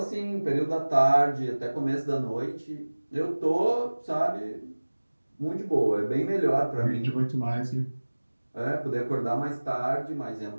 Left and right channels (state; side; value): inverted; both; correlation -1.00